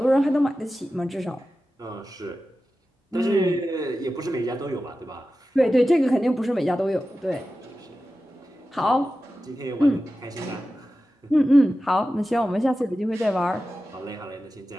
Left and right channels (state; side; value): normal; both; correlation 0.93